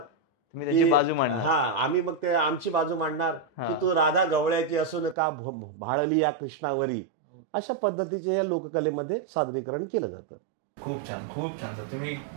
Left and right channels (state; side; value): drops out; left; at 5.2 s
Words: त्याची की बाजू मांडणार. हा आम्ही मग ते आमची बाजू मांडणार हा. की तू राधा गवळ्याची असून का भाळली या कृष्णावरी. ओके. अशा पद्धतीचे या लोककलेमध्ये सादरीकरण केलं जातं. खूप छान, खूप छान सर.